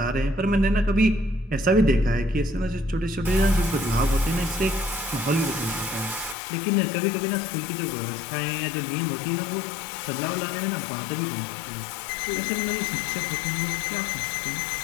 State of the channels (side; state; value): right; drops out; at 6.4 s